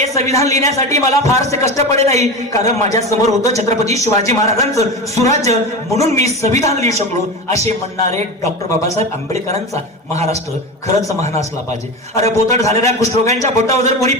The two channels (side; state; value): both; normal; correlation 0.25